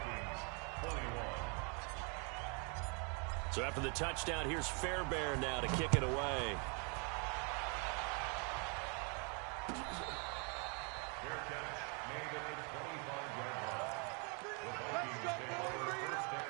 So after the touchdown, here's Fairbairn now to kick it away. Fair catch made at the 25-yard line. The Vikings take over 1st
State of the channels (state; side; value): quieter; left; 35.8 dB